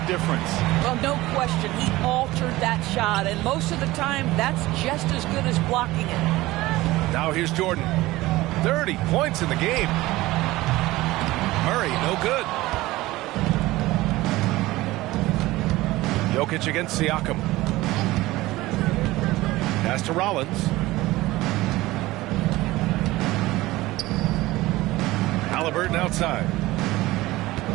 difference. Well, no question. He altered that shot. And most of the time, that's just as good as blocking it. Now here's Jordan. 30 points in the game. Murray, no good. Jokic against Siakam. Pass to Rollins. Halliburton outside.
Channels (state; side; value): quieter; left; 18.4 dB